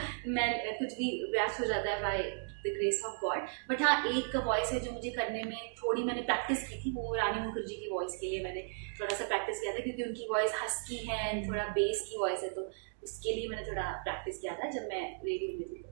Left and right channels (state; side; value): silent; left; digital silence